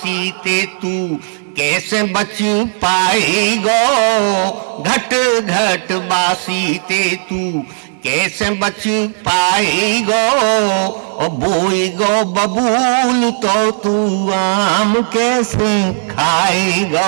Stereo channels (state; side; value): silent; left; digital silence